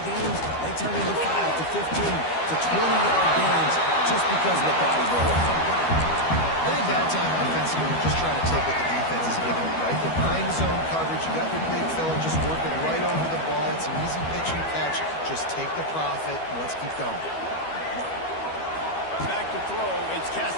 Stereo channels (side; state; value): right; late; 12 ms